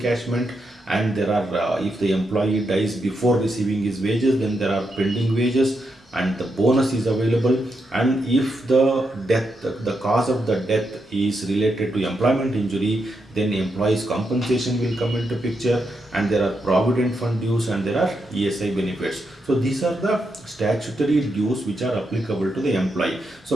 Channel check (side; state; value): both; normal; correlation 0.83